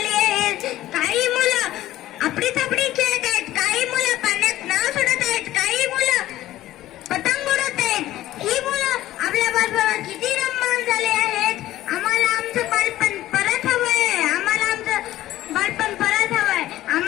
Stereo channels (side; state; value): right; quieter; 14.8 dB